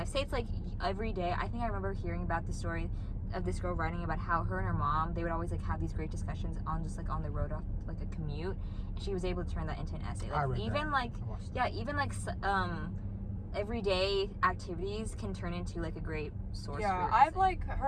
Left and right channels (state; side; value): identical; both; correlation 1.00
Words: Say it's like every day. I think I remember hearing about the story of this girl writing about how her and her mom, they would always like have these great discussions on just like on the road off like a commute, and she was able to turn that into an essay. Like even like everyday activities can turn into like a great source. Yeah, for I've like